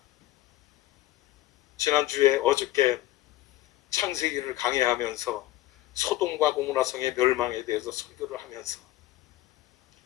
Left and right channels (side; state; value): right; quieter; 15.8 dB